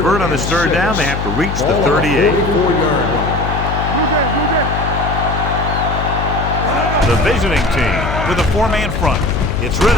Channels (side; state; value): left; noise; hum, 4 dB below the sound